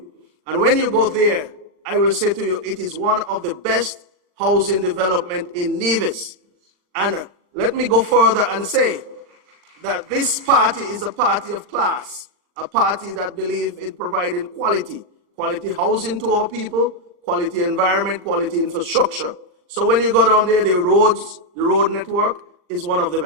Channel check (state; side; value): late; left; 40 ms